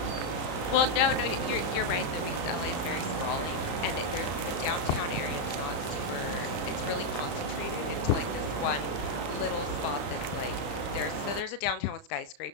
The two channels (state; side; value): late; right; 35 ms